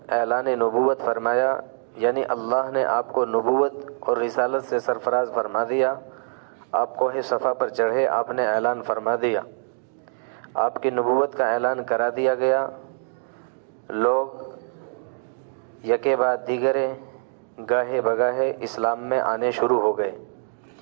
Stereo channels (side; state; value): left; silent; digital silence